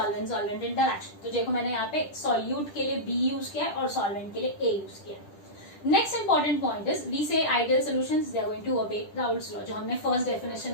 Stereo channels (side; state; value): right; late; 10 ms